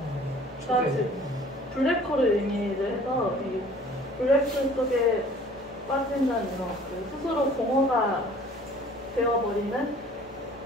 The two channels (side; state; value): both; normal; correlation 0.51